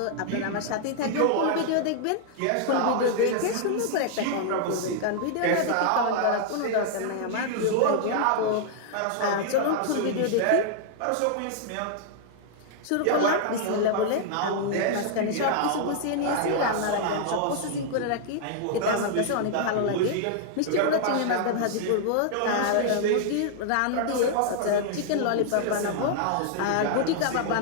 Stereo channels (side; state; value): both; different; correlation -0.01